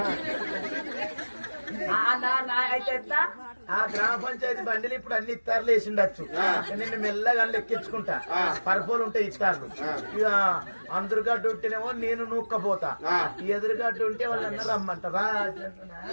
అయితే ఆ గ్రామ పంచాయతీ బండిలు ఇప్పుడు అన్ని ఇత్తారులు వేసిండొచ్చు. నిన్ను మెల్లగా ఎక్కించుకుంటా, పరుపులు ఉంటాయి ఇత్తారులు. ఇక అందరుగడ్డ ఉంటేనేమో నేను నూక్కపోతా, ఎదురుగడ్డ ఉంటే వాళ్ళన్నా రమ్మంటారా.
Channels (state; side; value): inverted; both; correlation -1.00